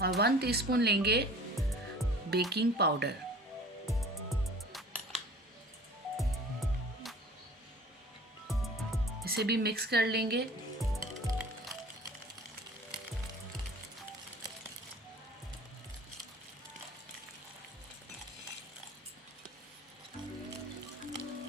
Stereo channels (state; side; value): normal; both; correlation 0.45